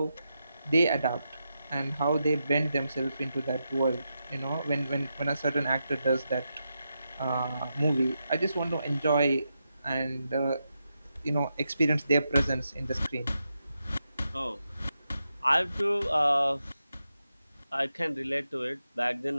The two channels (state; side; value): inverted; both; correlation -0.87